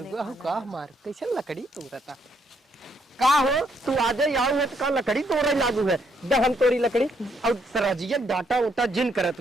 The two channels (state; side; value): normal; both; correlation 0.73